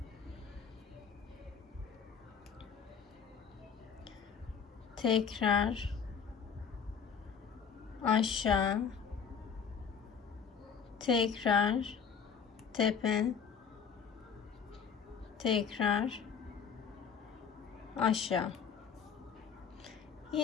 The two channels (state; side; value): quieter; right; 6.8 dB